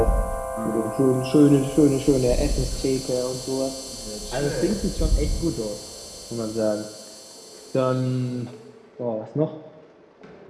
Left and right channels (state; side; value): identical; both; correlation 1.00